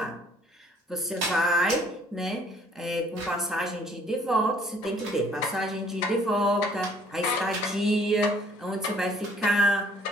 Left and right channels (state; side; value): normal; both; correlation 0.59